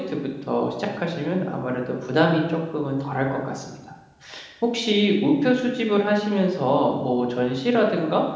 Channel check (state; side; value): identical; both; correlation 1.00